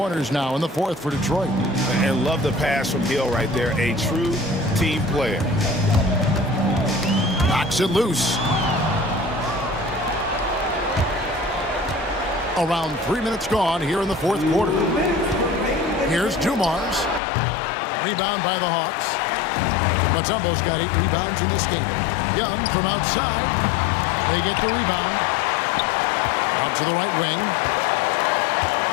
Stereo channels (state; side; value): drops out; right; at 17.2 s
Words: now in the fourth for Detroit. And love the pass from Hill right there. A true team player. Knocks it loose. Around 3 minutes gone here in the fourth quarter. Here's Dumars. Rebound by the Hawks. Mutombo's got 8 rebounds in this game. Young from outside. They get the rebound. Out to the right wing.